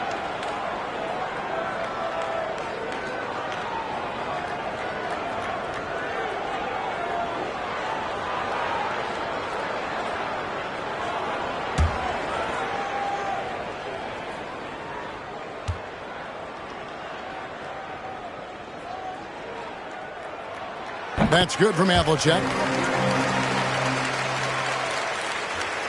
That's good from Havlicek.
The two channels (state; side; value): identical; both; correlation 1.00